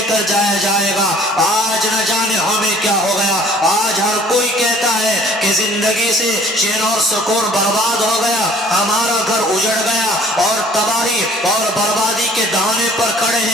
کر جایا جائے گا. آج نہ جانے ہمیں کیا ہو گیا. آج ہر کوئی کہتا ہے کہ زندگی سے چین اور سکون برباد ہو گیا, ہمارا گھر اجڑ گیا اور تباہی اور بربادی کے دہانے پر کھڑے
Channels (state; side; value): normal; both; correlation 0.54